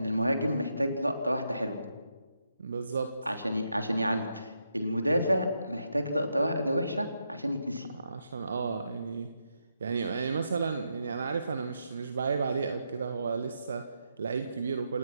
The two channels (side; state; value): both; inverted; correlation -0.82